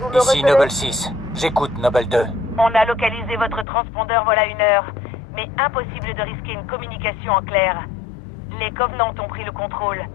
vous me Ici recevez? Noble 6. J'écoute, Noble 2. On a localisé votre transpondeur voilà 1 heure, mais impossible de risquer une communication en clair. Les Covenants ont pris le contrôle.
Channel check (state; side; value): drops out; right; at 3.7 s